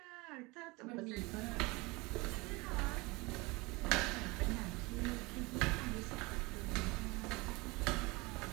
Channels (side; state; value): left; quieter; 24.5 dB